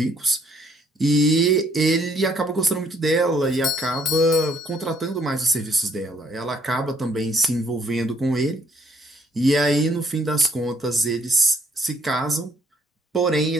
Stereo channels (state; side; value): normal; both; correlation 0.66